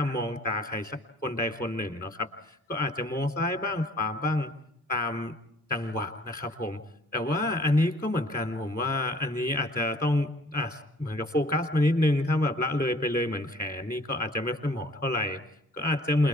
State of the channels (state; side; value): normal; both; correlation 0.55